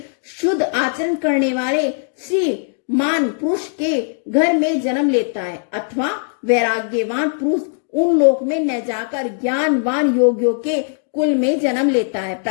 शुद्ध आचरण करने वाले श्रीमान पुरुष के घर में जन्म लेता है, अथवा वैराग्यवान पुरुष उन लोक में न जाकर ज्ञानवान योगियों के कुल में जन्म लेता है।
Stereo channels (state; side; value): silent; right; 66 dB below the other